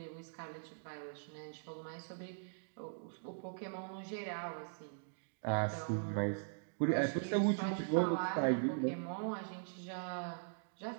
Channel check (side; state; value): left; silent; digital silence